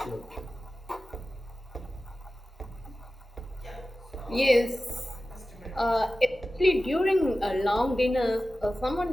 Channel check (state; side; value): normal; both; correlation 0.95